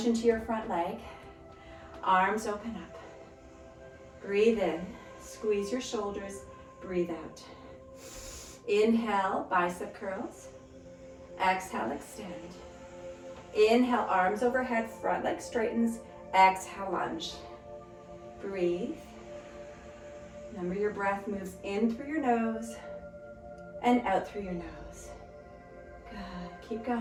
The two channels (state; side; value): identical; both; correlation 1.00